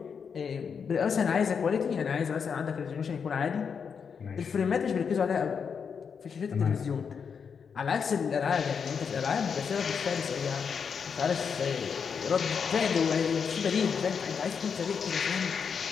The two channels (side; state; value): right; quieter; 6.4 dB